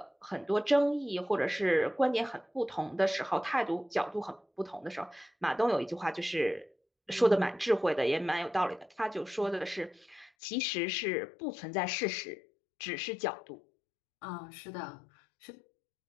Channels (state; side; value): drops out; right; at 10.3 s